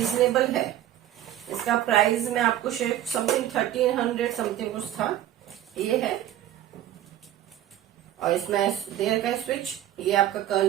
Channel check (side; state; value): left; quieter; 12.6 dB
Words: है। इसका प्राइस मैं आपको शेयर समथिंग 1300 समथिंग कुछ था। ये है और इसमें दे रखा है स्विच। ये आपका